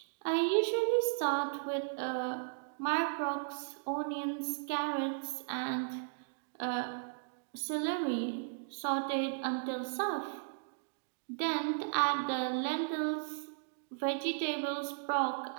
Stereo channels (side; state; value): left; silent; digital silence